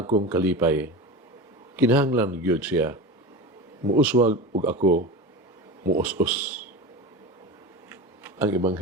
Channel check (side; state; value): both; normal; correlation 0.27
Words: kalipay. Kinahanglan gyud siya. Muuswag ug ako muus-us. Ang